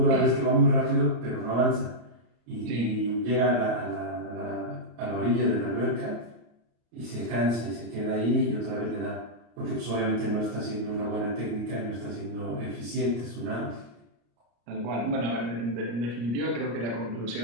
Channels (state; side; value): late; left; 34 ms